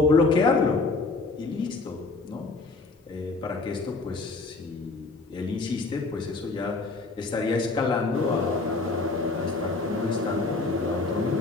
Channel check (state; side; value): quieter; right; 3.6 dB